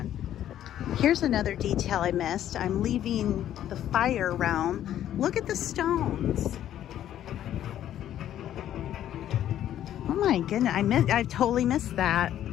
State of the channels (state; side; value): quieter; right; 11.5 dB